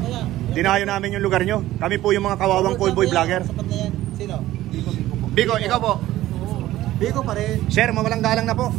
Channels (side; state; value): left; quieter; 15.1 dB